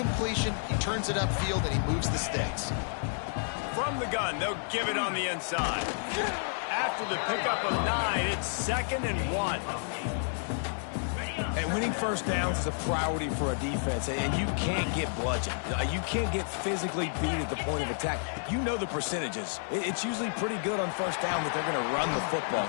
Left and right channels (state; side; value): silent; right; digital silence